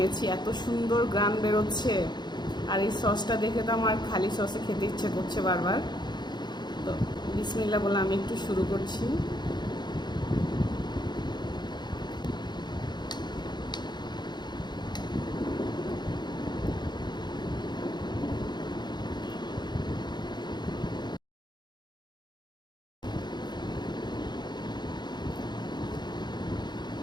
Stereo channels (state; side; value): late; right; 0.21 ms